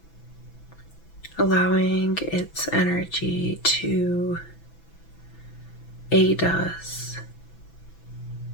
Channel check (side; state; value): right; late; 6.0 ms